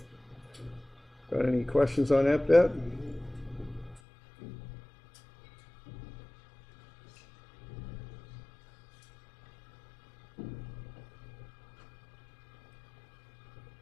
Got any questions on that bit?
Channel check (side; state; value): right; drops out; at 4.0 s